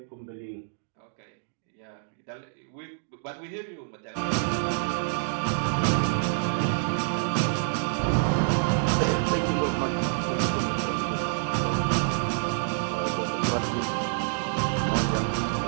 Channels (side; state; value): left; silent; digital silence